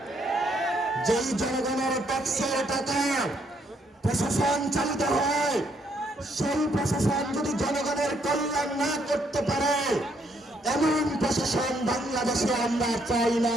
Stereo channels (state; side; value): normal; both; correlation 0.71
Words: যেই জনগণের ট্যাক্সের টাকা প্রশাসন চালিত হয়, সেই প্রশাসন যদি জনগণের কল্যাণ না করতে পারে, এমন প্রশাসন বাংলাদেশে আমরা চাই না,